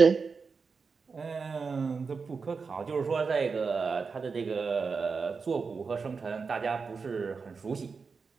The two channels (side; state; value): left; quieter; 5.0 dB